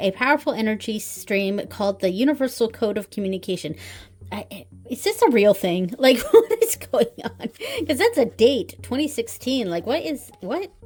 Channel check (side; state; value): both; identical; correlation 1.00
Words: powerful energy stream called the Universal Code of Communication. Is this a real thing? Like, what is going on? Because that's a date, 2016. Like, what?